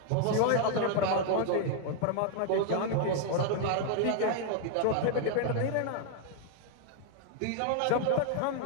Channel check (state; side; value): different; both; correlation 0.00